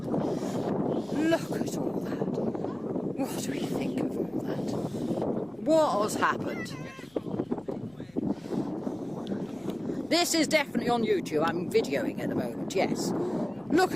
Look at all that. What do we think of all that? What has happened? This is definitely on YouTube. I'm videoing at the moment, yes. Look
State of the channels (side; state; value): left; noise; hum, 29 dB below the sound